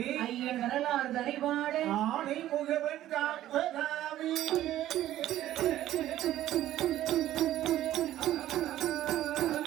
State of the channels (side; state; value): left; quieter; 13.4 dB